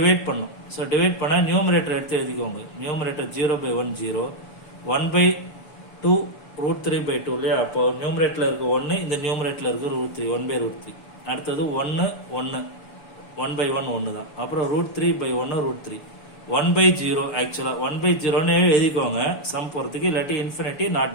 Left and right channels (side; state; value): right; late; 6.9 ms